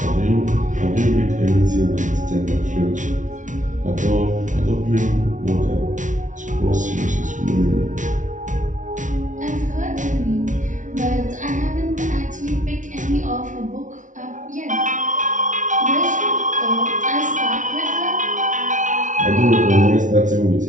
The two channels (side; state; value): left; late; 0.37 ms